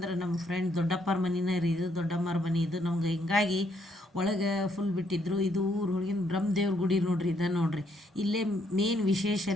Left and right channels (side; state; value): both; normal; correlation 0.72